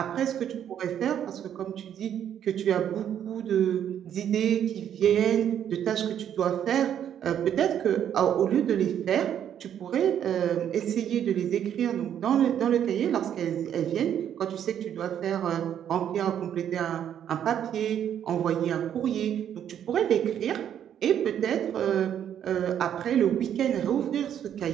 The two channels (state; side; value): quieter; left; 9.7 dB